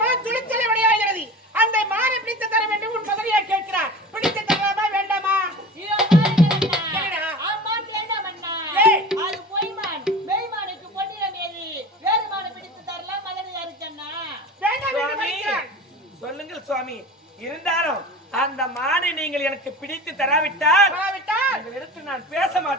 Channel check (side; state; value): both; normal; correlation 0.35